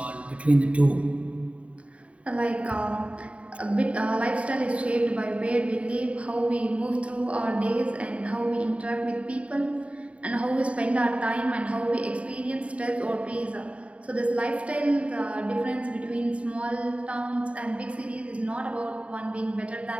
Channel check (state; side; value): late; left; 0.064 ms